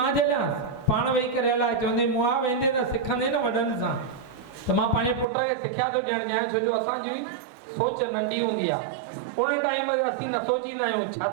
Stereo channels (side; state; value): left; drops out; at 5.2 s